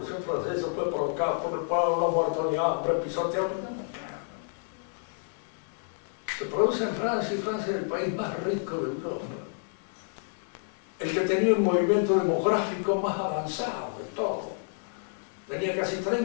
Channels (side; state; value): right; silent; 58 dB below the other